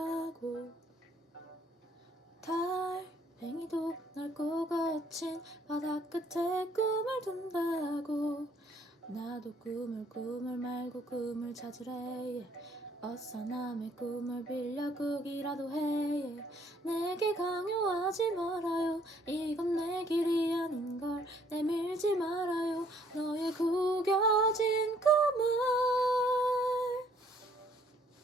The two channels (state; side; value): normal; both; correlation 0.63